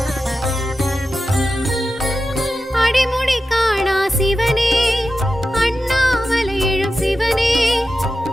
அடிமுடி காணா சிவனே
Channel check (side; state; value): both; normal; correlation 0.92